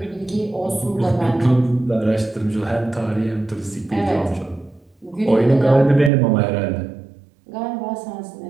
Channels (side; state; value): left; drops out; at 6.1 s